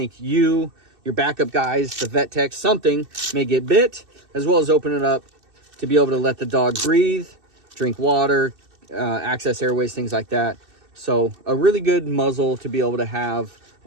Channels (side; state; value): left; late; 2.6 ms